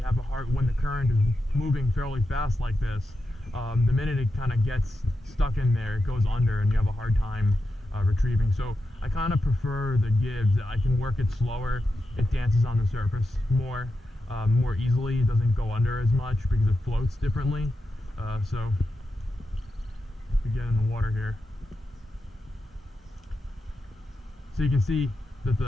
have a hard, when the current is moving fairly fast like this, the minute it kind of gets stuck in there, it goes under and you have a hard time retrieving. So I kind of prefer the Gibbs. I can work it slower. It dances on the surface more easily. It doesn't go under as much because it floats differently. So if we get in the water here, so you can see that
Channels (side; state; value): both; normal; correlation 0.89